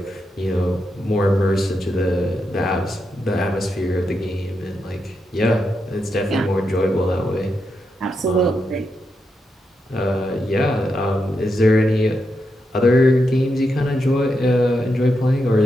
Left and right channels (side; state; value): both; normal; correlation 0.85